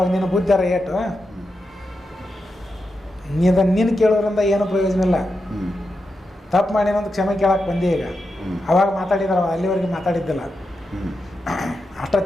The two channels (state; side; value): normal; both; correlation 0.88